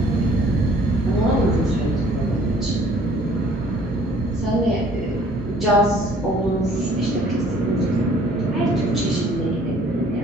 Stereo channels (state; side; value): normal; both; correlation 0.56